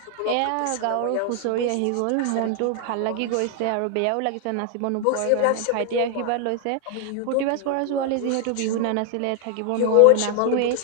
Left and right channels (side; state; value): both; different; correlation 0.00